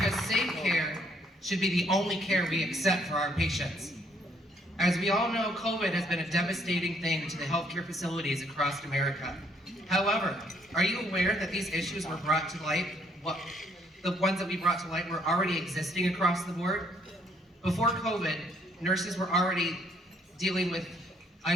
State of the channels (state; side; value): normal; both; correlation 0.67